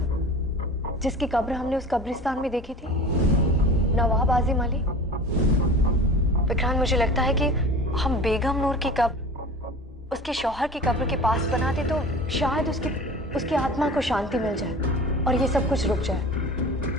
जिसकी कब्र हमने उस कब्रिस्तान में देखी थी, नवाब आजिम अली। विक्रांत, मुझे लगता है कि हम बेगम नूर की कब्र उसके शौहर की कब्र के पास बनाते तो शायद उसकी आत्मा को शांति मिल जाए और ये सब कुछ रुक जाए।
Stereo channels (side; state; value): both; normal; correlation 0.38